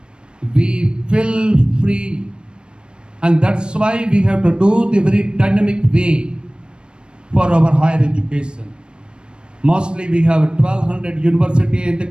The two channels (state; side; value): late; left; 0.054 ms